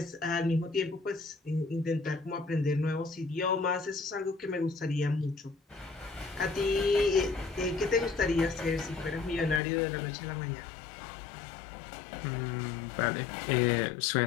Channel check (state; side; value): drops out; right; at 9.6 s